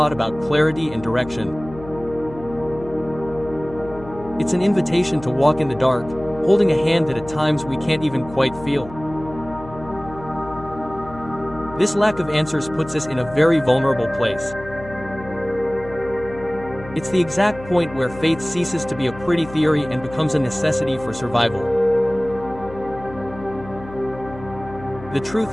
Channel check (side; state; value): left; noise; hum, 16 dB below the sound